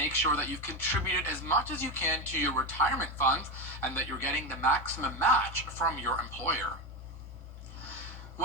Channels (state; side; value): normal; both; correlation 0.14